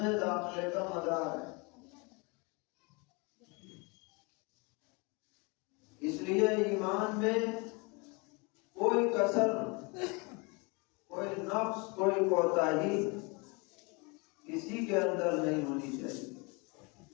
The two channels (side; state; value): right; quieter; 29.6 dB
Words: میں داخلے کا مدار ہے۔ اس لیے ایمان میں کوئی کسر، کوئی نقص، کوئی کوتاہی کسی کے اندر نہیں ہونی چاہیے۔